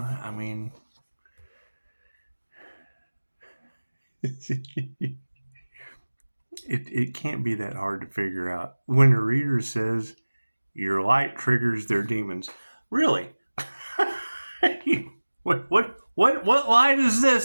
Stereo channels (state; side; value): inverted; both; correlation -1.00